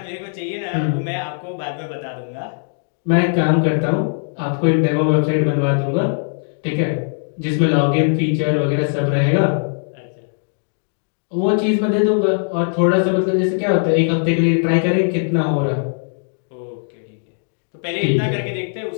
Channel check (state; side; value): silent; right; 66 dB below the other